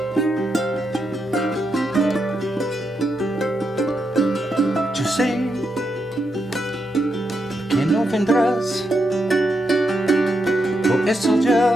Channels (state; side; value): normal; both; correlation 0.83